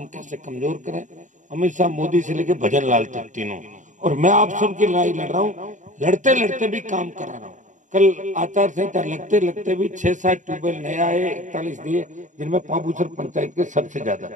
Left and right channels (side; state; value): left; late; 0.36 ms